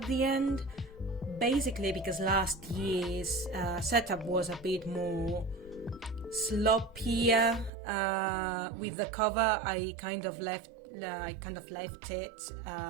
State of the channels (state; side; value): drops out; left; at 7.7 s